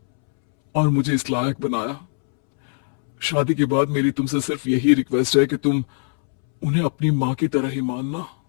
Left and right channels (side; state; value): right; silent; 65 dB below the other